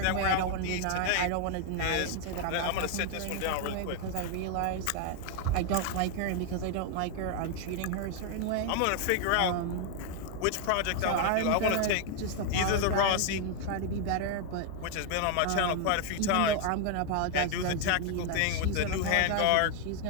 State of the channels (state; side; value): different; both; correlation 0.01